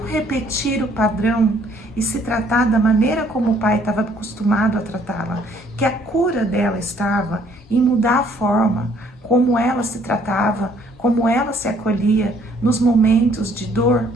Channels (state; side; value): normal; both; correlation 0.63